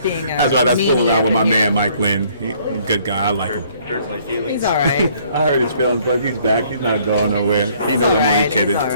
a That's why that's fooling media out with my here. man Mike Lynn. He's a good guy. I like him. He's all right. I heard his feelings, but he's back. He's not going nowhere. He He's knows all I'm only right. kidding. He's all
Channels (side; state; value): both; inverted; correlation -0.61